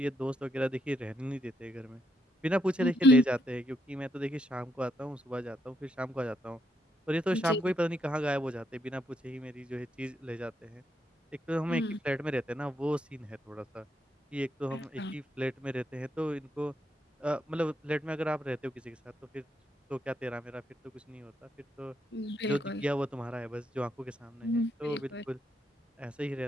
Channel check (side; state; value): both; normal; correlation 0.77